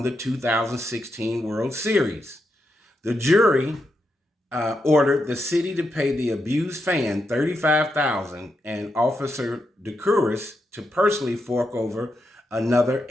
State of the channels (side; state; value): both; normal; correlation 0.84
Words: the 2016 World Series. The jury ordered the city to pay the abused fan $35,000 and Officer Decuris to personally fork over another